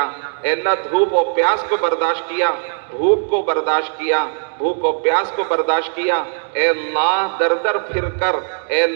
اے اللہ دھوپ و پیاس کو برداشت کیا، بھوک کو برداشت کیا، بھوک و پیاس کو برداشت کیا، اے اللہ در در پھر کر، اے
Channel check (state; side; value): silent; left; 67 dB below the other